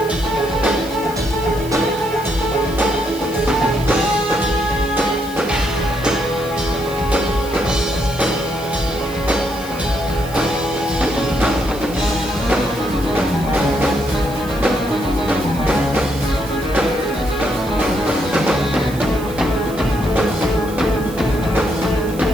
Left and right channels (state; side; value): noise; right; hiss, 17 dB below the sound